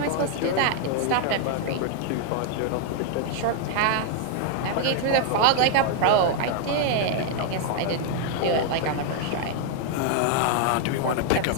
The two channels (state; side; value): different; both; correlation 0.00